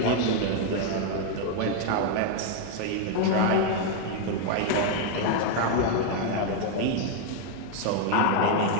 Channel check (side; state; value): both; different; correlation 0.01